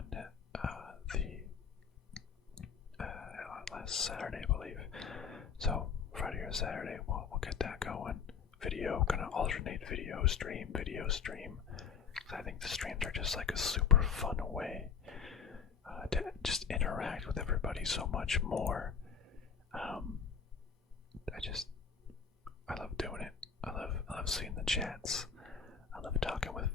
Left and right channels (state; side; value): quieter; right; 6.6 dB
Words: last Saturday, I believe. So Friday or Saturday, we'll get that going. Video, gonna alternate video stream. I think the streams are just like a super fun way to just interact with everybody so much more. I love doing it. I love seeing the chats. I love talking with